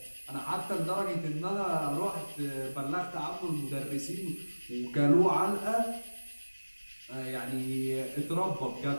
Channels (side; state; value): both; inverted; correlation -1.00